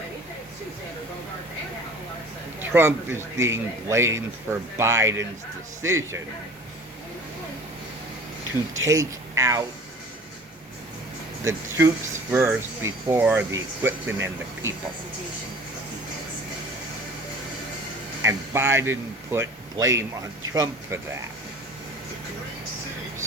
Trump is being blamed for Biden's decision to take out the troops first before the equipment and the people. And Biden put blame on Trump for that.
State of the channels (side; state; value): both; normal; correlation 0.44